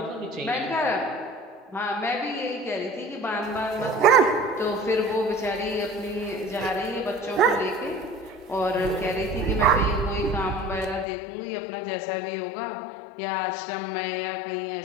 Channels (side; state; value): right; drops out; at 11.1 s